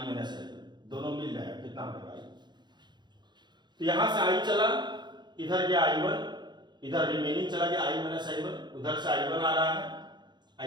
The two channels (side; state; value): left; late; 0.21 ms